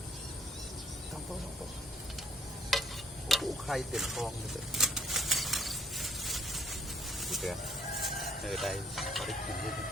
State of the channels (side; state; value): both; normal; correlation 0.65